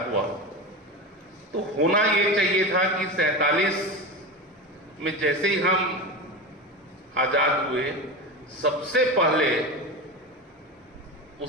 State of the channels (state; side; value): normal; both; correlation 0.24